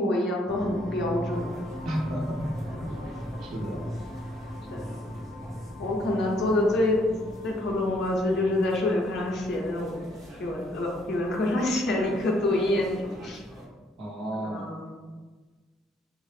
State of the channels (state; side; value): normal; both; correlation 0.67